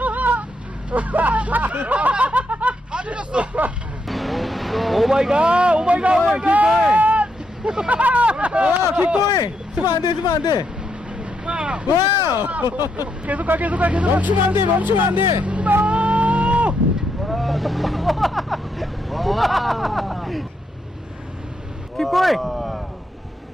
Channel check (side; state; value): both; normal; correlation 0.79